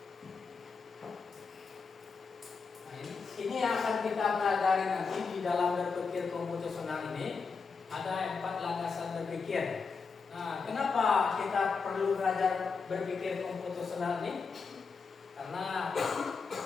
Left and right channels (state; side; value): quieter; right; 5.1 dB